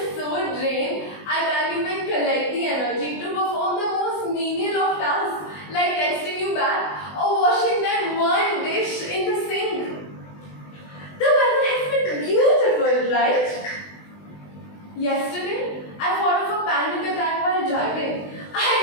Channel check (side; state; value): right; late; 20 ms